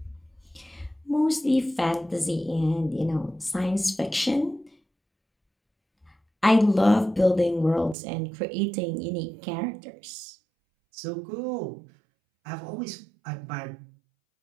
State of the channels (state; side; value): drops out; left; at 8.0 s